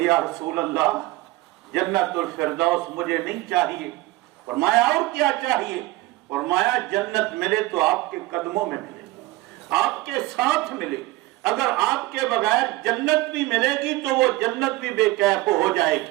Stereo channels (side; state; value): left; quieter; 19.1 dB